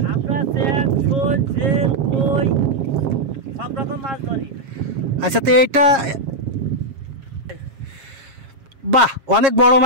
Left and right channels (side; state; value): left; late; 7.4 ms